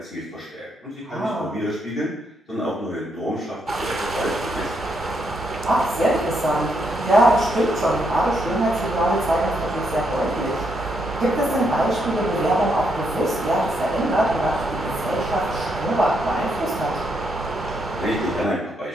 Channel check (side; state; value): both; normal; correlation 0.77